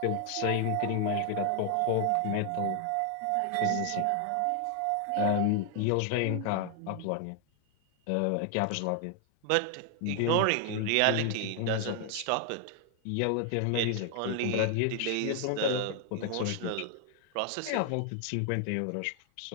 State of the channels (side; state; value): both; different; correlation 0.00